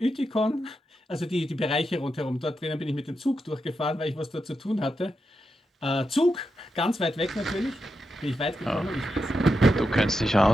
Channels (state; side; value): normal; both; correlation 0.87